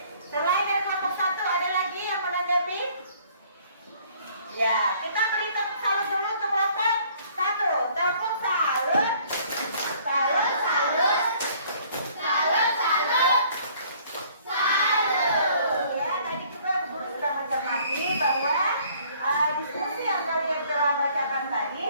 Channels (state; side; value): inverted; both; correlation -0.58